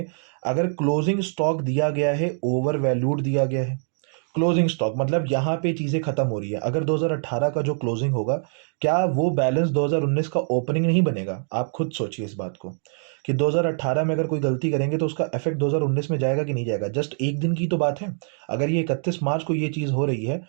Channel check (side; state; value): left; silent; 56 dB below the other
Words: अगर क्लोजिंग स्टॉक दिया गया है, ओवर वैल्यूड दिया गया है, क्लोजिंग स्टॉक मतलब यहाँ पे चीज़ें खत्म हो रही है। अगर 2018 का जो क्लोजिंग होगा, क्या वो बैलेंस 2019 का ओपनिंग नहीं बनेगा? आप खुद सोचिए इस बात को। कि 2018 में अगर कोई गलती करेंगे तो उसका इफेक्ट 2019 में जाएगा कि नहीं जाएगा। जस्ट एक दिन की तो बात है। अगर ये 31 मार्च को ये चीज़ हो रही है